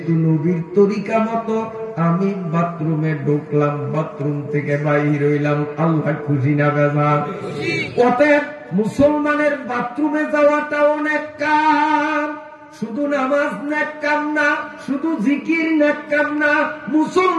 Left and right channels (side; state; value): both; identical; correlation 1.00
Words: নবীর তরিকা মতো আমি বাথরুমে ঢুকলাম, বাথরুম থেকে বাইর হইলাম, আল্লাহ খুশি না বেজার? অতএব মুসলমানের বাথরুমে যাওয়াটা অনেক কাম, শুধু নামাজ নেক কাম না, শুধু জিকির নেক কাম না,